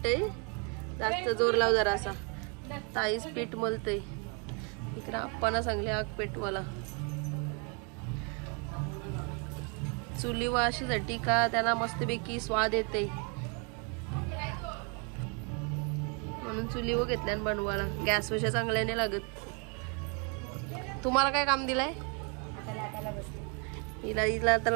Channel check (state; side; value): quieter; left; 35.9 dB